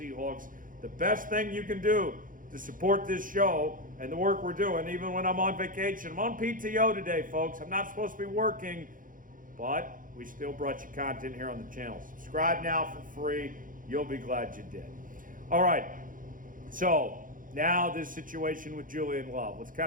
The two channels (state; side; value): late; left; 0.39 ms